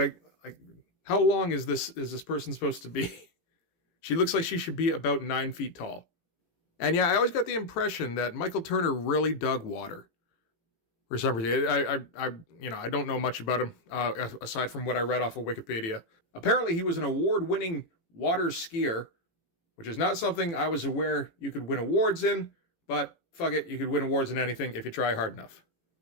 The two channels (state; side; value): late; right; 18 ms